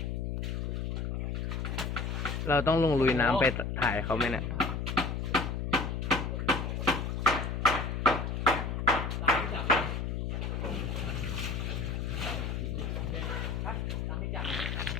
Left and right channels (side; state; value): left; noise; hum, 2 dB below the sound